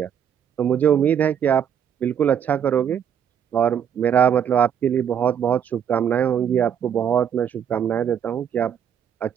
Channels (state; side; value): quieter; left; 8.6 dB